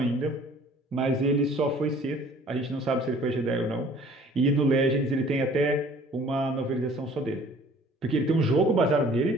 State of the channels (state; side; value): normal; both; correlation 0.53